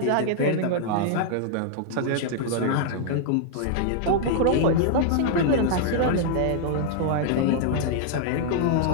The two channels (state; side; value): different; both; correlation -0.01